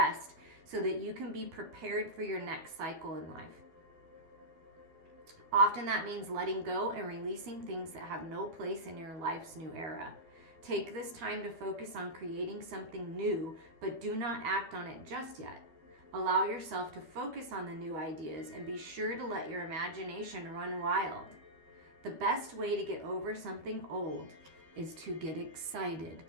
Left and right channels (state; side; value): late; left; 12 ms